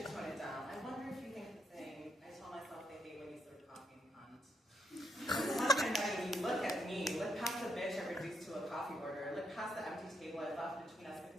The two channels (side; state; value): both; normal; correlation 0.79